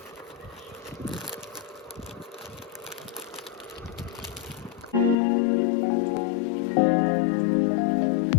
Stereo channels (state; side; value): drops out; right; at 5.2 s